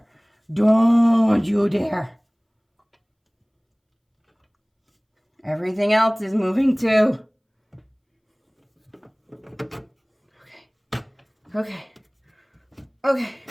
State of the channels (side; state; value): both; identical; correlation 1.00